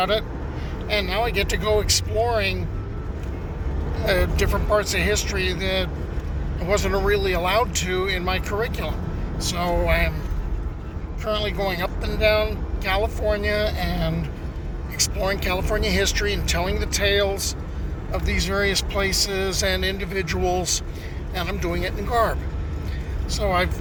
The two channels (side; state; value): both; identical; correlation 1.00